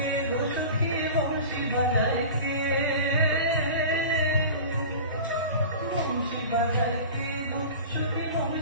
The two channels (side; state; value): both; inverted; correlation -0.35